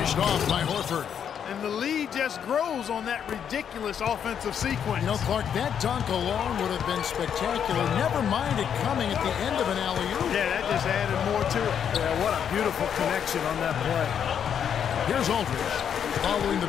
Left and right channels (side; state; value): right; quieter; 8.3 dB